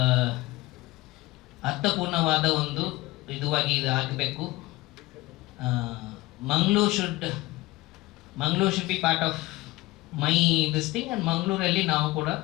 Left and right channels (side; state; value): right; quieter; 19.5 dB